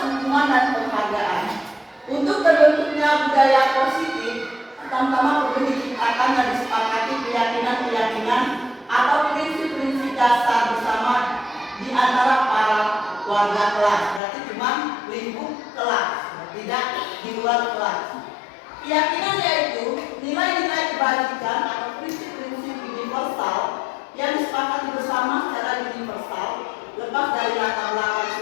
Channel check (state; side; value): drops out; right; at 14.2 s